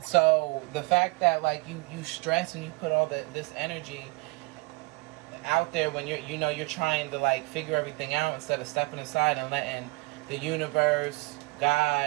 So the fact that, like, you stress and you put all this energy out there when you're trying to, like, figure everything out instead of stepping aside and letting the universe,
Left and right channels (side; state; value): left; quieter; 25.8 dB